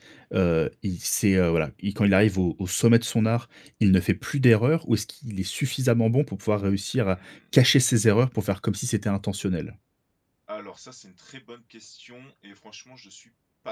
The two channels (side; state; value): both; identical; correlation 1.00